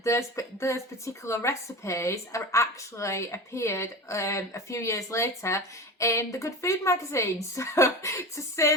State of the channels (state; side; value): normal; both; correlation 0.30